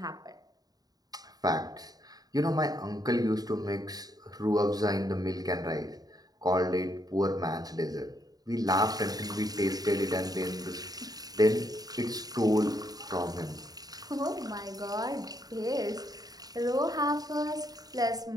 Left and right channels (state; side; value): late; left; 0.18 ms